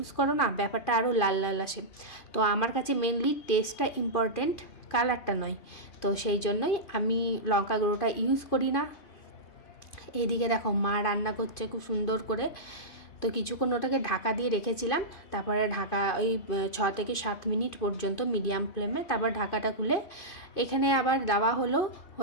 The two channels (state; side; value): late; right; 2.5 ms